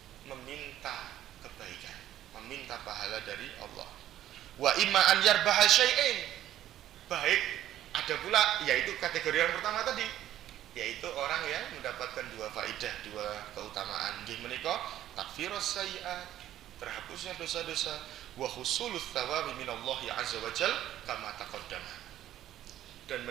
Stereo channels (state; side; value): quieter; left; 12.5 dB